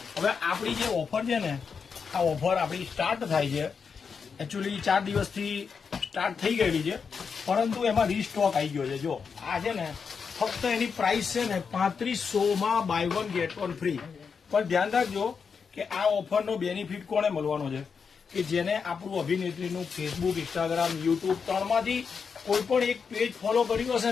હવે આપણી જે ઓફર છે ને, આ ઓફર આપણી સ્ટાર્ટ થાય છે, એકચ્યુઅલી 4 દિવસથી સ્ટાર્ટ થઈ ગયેલી છે, પરંતુ એમાં રીસ્ટોક આવી ગયો છે. જો આ છે ને, ફક્ત એની પ્રાઇસ છે ને 3500 બાય 1 ગેટ 1 ફ્રી. પણ ધ્યાન રાખજો કે આ ઓફરનો બેનિફિટ કોને મળવાનો છે, કે જેને આપણું અભિનેત્રીનું ફેસબુક, ઇન્સ્ટાગ્રામ, યુટ્યુબ ત્રણમાંથી કોઈ પણ એક પેજ ફોલો કર્યું હશે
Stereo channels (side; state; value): right; quieter; 5.9 dB